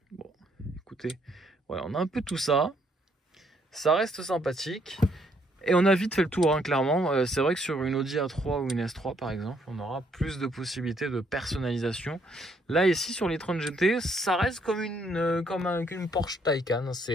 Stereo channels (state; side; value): normal; both; correlation 0.69